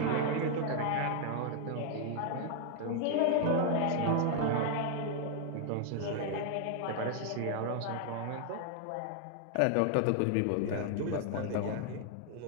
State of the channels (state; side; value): different; both; correlation 0.00